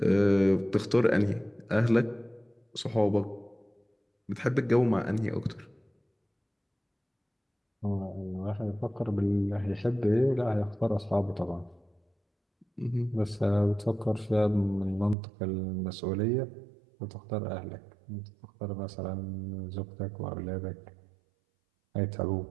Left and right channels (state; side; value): drops out; left; at 15.2 s